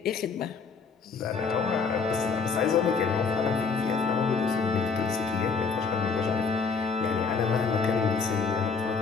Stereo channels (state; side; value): quieter; right; 5.2 dB